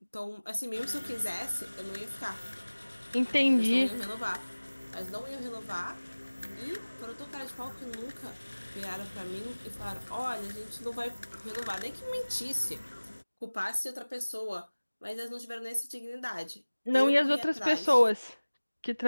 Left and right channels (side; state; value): both; inverted; correlation -1.00